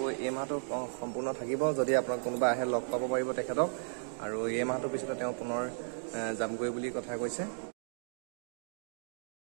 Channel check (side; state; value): left; silent; digital silence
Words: এই মাহটো সম্পূৰ্ণ থাকিব যদি আপোনাক কোনোবা আহে লগ পাব পাৰিব তেখেতক আৰু এই মাহটোৰ পিছতে তেওঁ পুনৰ যামগৈ বুলি কথা কৈছে